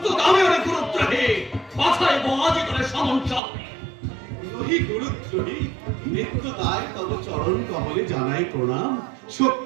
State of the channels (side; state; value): left; drops out; at 3.4 s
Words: আমি অনেক গুরুত্বহী মাথায় বাজি করে সমঞ্চল নহি গুরুদ্রোহী, নিত্য দায় তব চরণ কমলে জানাই প্রণাম।